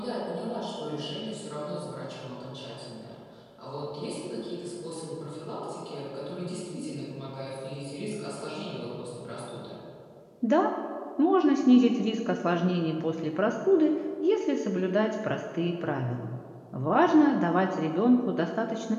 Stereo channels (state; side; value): identical; both; correlation 1.00